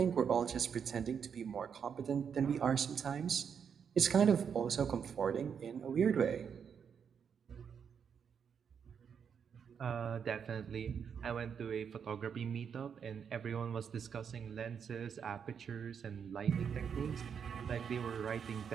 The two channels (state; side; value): quieter; left; 7.2 dB